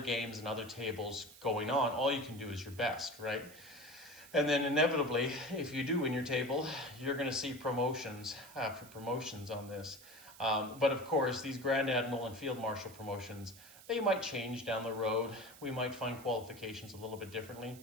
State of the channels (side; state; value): right; noise; hiss, 19 dB below the sound